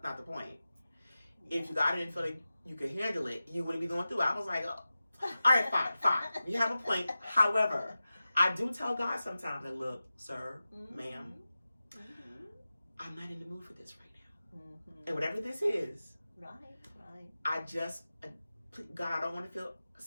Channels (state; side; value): inverted; both; correlation -0.94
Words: the point. If God didn't feel like you could handle it, you wouldn't be going through it. I was like, oh, all right, fine. You have a point. However, I do tell God sometimes, like, look, sir, ma'am, I'm not in the mood for this right now. And whatever this is, I just, God, I don't want to